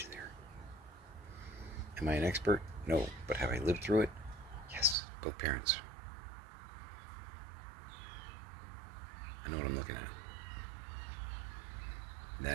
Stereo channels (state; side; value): drops out; left; at 5.0 s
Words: there. Am I an expert? No. But have I lived through it? Yes. Both parents. I know what I'm looking at.